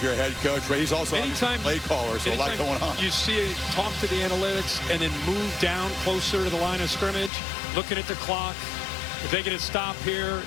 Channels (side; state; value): right; drops out; at 7.3 s